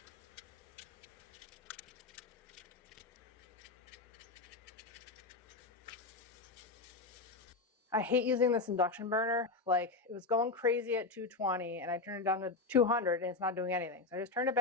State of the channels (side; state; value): right; quieter; 3.7 dB